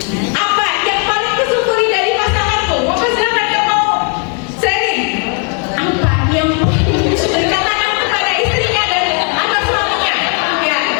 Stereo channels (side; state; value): right; quieter; 37.3 dB